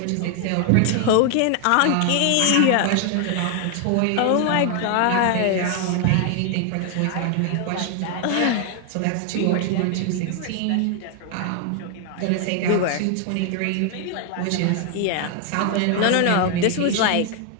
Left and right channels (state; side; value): different; both; correlation 0.00